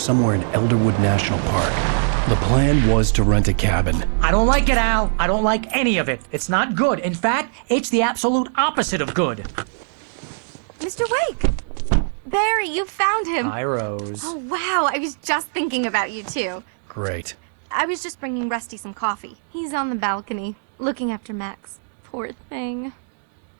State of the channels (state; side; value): silent; left; digital silence